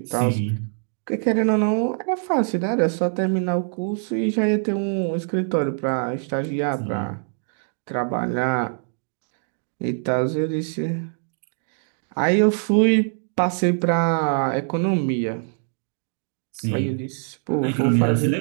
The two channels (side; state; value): left; silent; digital silence